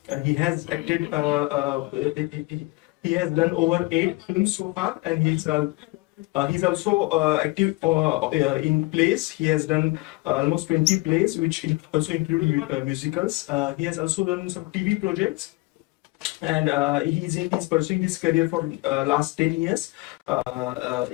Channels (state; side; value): quieter; right; 23.7 dB